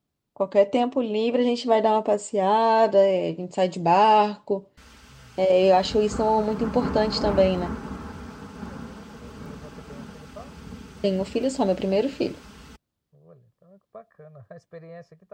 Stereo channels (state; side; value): identical; both; correlation 1.00